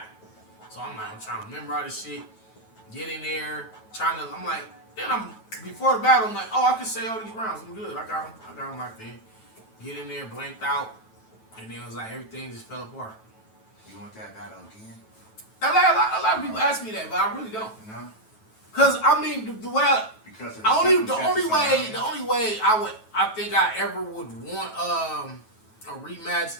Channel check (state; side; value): late; right; 9.2 ms